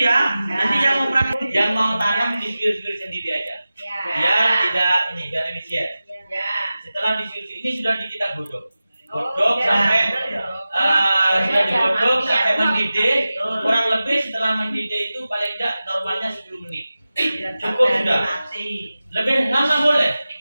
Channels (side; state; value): both; inverted; correlation -0.95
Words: ya. Nanti yang mau tanam disuwir-suwir sendiri aja. Ya, biar efisien. Setelah disuwir ini sudah kita godok sampai sudah digodok sampai mendidih. Kurang lebih setelah mendidih itu paling tidak normalnya 10 menit. Cukup sudah. Lebih lama boleh.